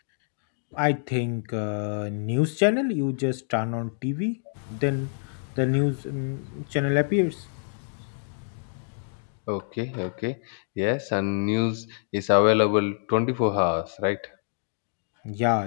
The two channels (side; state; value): right; silent; digital silence